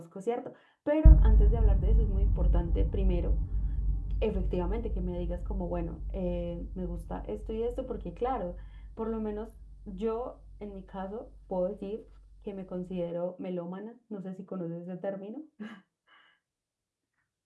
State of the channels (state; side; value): identical; both; correlation 1.00